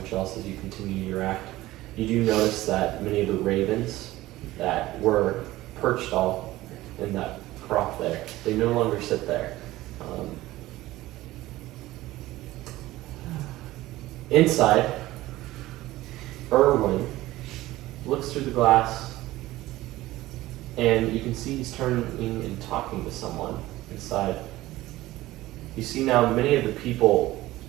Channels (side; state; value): left; quieter; 17.1 dB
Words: else as you continue your act. You do notice that many of the ravens that were perched all in that crop there, they no longer sit there. Inside, Erwin looks through the glass, and you can see he's turning and talking to someone inside. You see now many of the people,